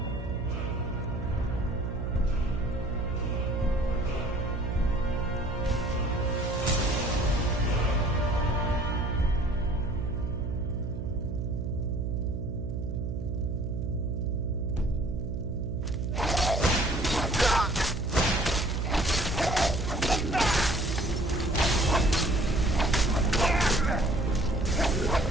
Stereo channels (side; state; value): right; noise; hum, 3 dB below the sound